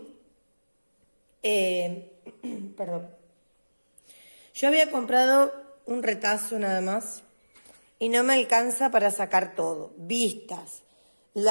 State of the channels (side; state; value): both; inverted; correlation -1.00